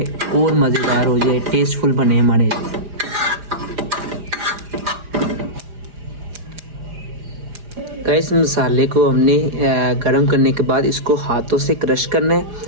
और मज़ेदार हो जाए, टेस्टफुल बने हमारे। गाइस, मसाले को हमने गरम करने के बाद इसको हाथों से क्रश करना है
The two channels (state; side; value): late; left; 4.9 ms